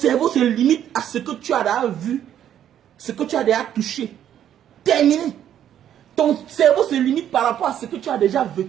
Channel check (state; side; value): quieter; left; 10.4 dB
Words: se limite à ce que tu as déjà vu, ce que tu as déjà touché. Terminé. Ton cerveau se limite par rapport à ce que tu as déjà